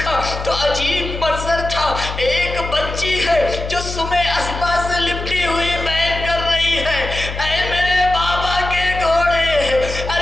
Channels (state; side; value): noise; left; hum, 7 dB below the sound